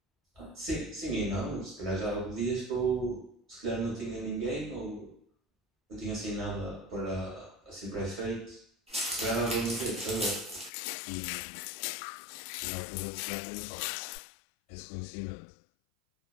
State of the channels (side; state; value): right; drops out; at 10.7 s